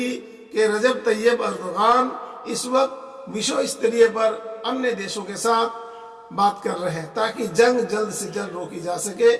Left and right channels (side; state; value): both; identical; correlation 1.00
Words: के रजब तैयब अर्दोगान इस वक्त विश्व स्तरीय पर अन्य देशों के साथ बात कर रहे हैं ताकि जंग जल्द से जल्द रोकी जा सके।